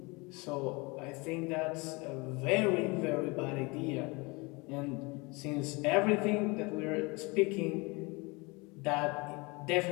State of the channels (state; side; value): quieter; right; 26.7 dB